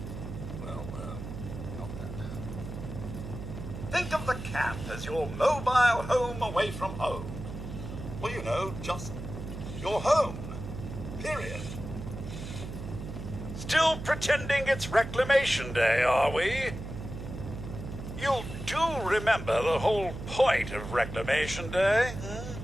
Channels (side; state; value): right; noise; hum, 8 dB below the sound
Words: Not that. Think of the camp as your mobile home away from home. Well, you know, just your home. Period. Still pretending it's Reclamation Day, are we? You do remember the whole point of Reclamation Day?